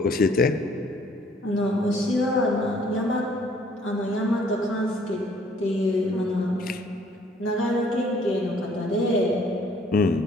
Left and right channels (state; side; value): normal; both; correlation 0.61